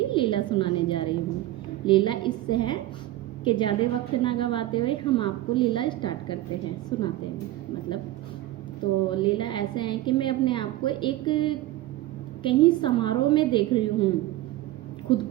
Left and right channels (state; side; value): quieter; left; 15.7 dB